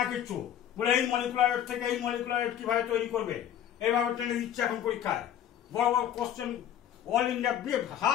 না কিচ্ছু, বলে এই মলিকুলার ওয়েট থেকে এই মলিকুলার ওয়েট কিভাবে তৈরি করবে, এইভাবে টেনে দিচ্ছে এখন পরীক্ষায়। বড় বড় question, all India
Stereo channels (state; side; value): quieter; right; 10.4 dB